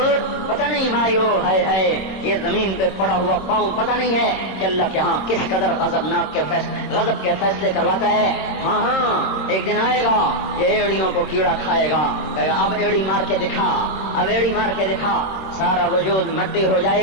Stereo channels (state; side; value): late; right; 26 ms